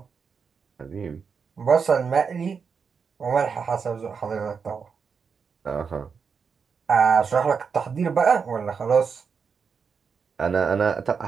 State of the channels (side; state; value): left; quieter; 5.9 dB